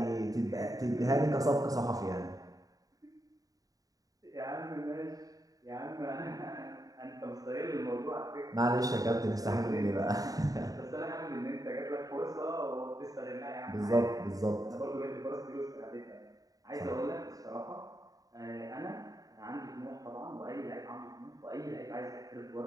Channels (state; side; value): late; left; 0.18 ms